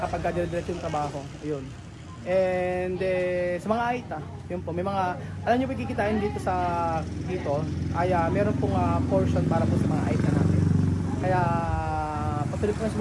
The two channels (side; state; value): both; identical; correlation 1.00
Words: dire-diretso yung trabaho, ayun. And sa mga AITA, yun po, may mga, alam nyo, kikitain dito ay meron pong portion para po sa mga AITA natin. Kaya patuloy po na